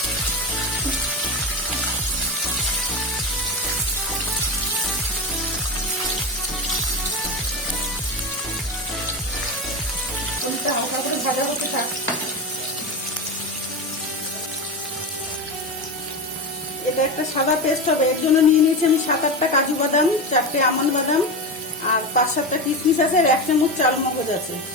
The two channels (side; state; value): both; normal; correlation 0.20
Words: হালকা করে ভাজা হতে থাক। এটা একটা সাদা পেস্ট হবে। এর জন্য নিয়ে নিয়েছি আমি 7-8টা কাজু বাদাম, 4টে আমন্ড বাদাম, আর 5-7টা কিশমিশ আছে, আর 1 চামচ চাল মগজ আছে।